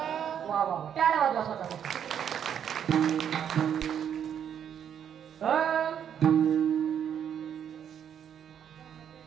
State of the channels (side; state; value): left; quieter; 8.8 dB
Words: वा वा टाळ्या वाजवा स्वतः.